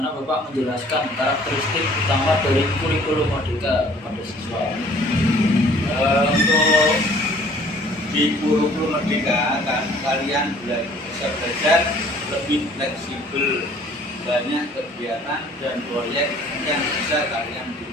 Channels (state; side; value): normal; both; correlation 0.55